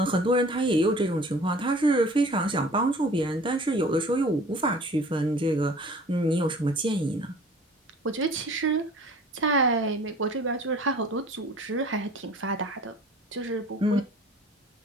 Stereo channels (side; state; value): both; normal; correlation 0.47